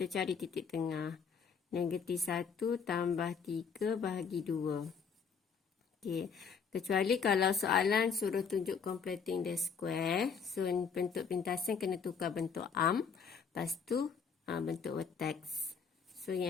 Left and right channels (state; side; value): quieter; right; 6.1 dB